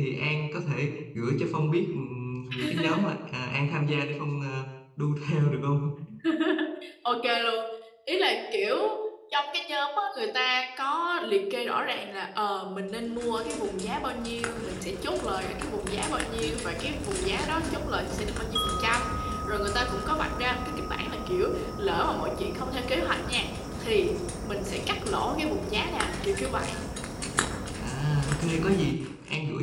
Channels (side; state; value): both; identical; correlation 1.00